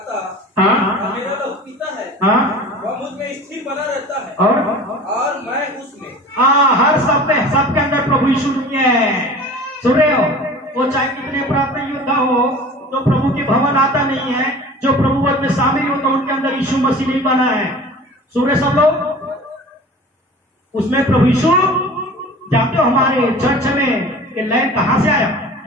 हाँ, मेरा लहू पीता है, हाँ, वह मुझ में स्थिर बना रहता है, और मैं उसमें। हाँ, हर सब में, सबके अंदर प्रभु यीशु है। सुन रहे हो? वो चाहे कितने प्राप्त योद्धा हो, जो प्रभु के भवन आता नहीं है, जो प्रभु वध में शामिल होता, उनके अंदर यीशु मसीह नहीं बना है। सुन रहे सब लोग? उसमें प्रभु यीशु, जानते हो हमारे चर्च में ये लाइन कहां से आया?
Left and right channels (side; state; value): both; normal; correlation 0.40